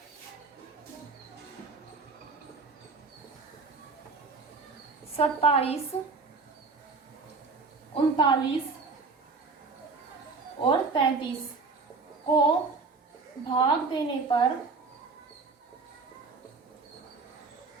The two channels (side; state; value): left; quieter; 4.3 dB